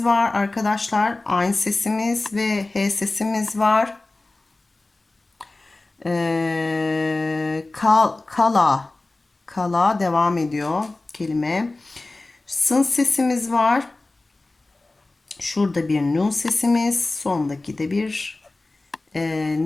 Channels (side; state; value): right; quieter; 3.1 dB